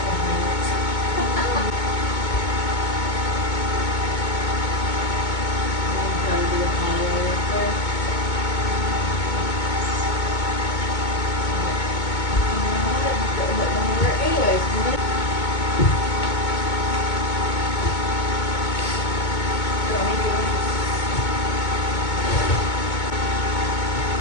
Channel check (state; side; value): late; right; 2.2 ms